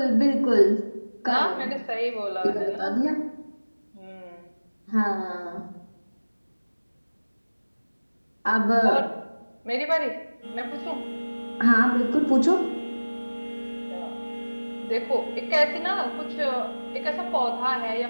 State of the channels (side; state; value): both; inverted; correlation -1.00